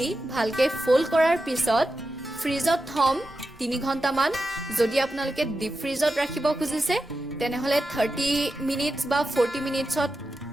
ভালকে ফোল্ড কৰাৰ পিছত ফ্ৰিজত থম 3 ঘণ্টামান যদি আপোনালোকে ডিপ ফ্ৰিজত ৰাখিব খুজিছে তেনেহলে 30 মিনিটছ বা 40 মিনিটছত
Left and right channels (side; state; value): both; normal; correlation 0.90